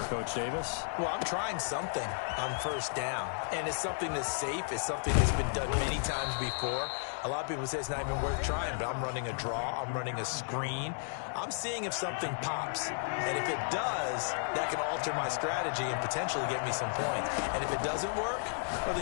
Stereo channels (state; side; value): silent; right; digital silence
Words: Coach Davis? Well, I'm trying something on 1st down, and it's something that's safe. It's something that's been done many times before. A lot of people say it's not even worth trying, but I'm running a draw. I'm running a screen. I'm seeing if something pops. And if it does, that can alter my strategy and potentially get me some points. And if it doesn't work, well,